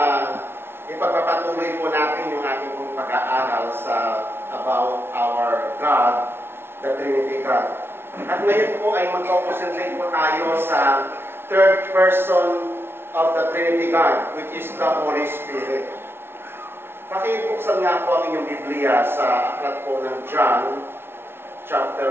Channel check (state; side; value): late; left; 0.11 ms